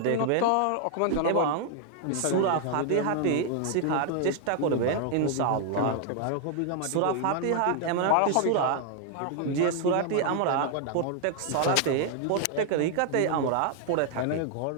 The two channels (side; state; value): both; different; correlation 0.00